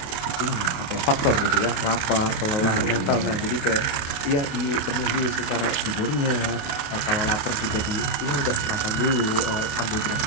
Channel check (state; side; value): late; right; 28 ms